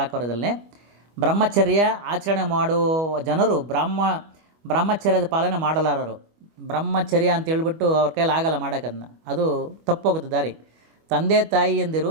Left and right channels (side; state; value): left; late; 25 ms